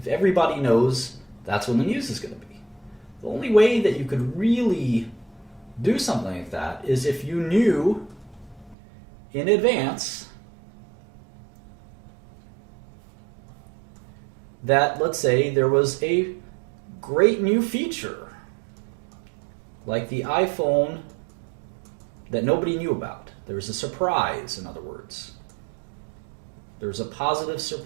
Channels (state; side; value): drops out; left; at 8.8 s